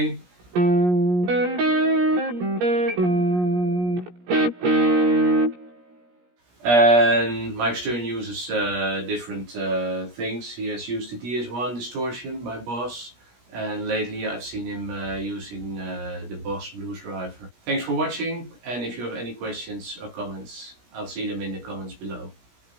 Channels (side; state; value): left; late; 17 ms